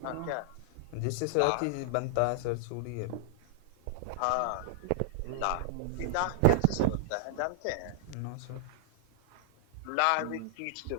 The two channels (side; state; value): both; different; correlation -0.01